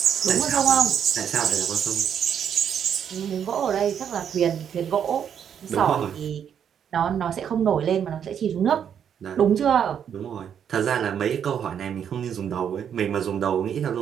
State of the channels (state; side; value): quieter; left; 8.4 dB